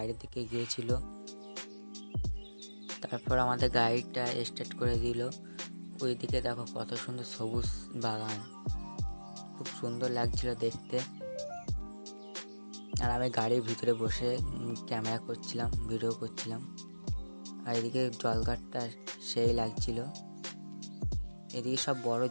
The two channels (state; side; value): inverted; both; correlation -1.00